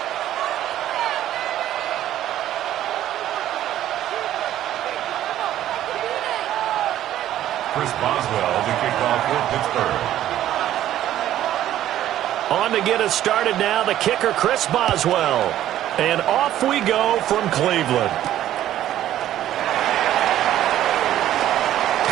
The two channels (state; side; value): quieter; left; 12.5 dB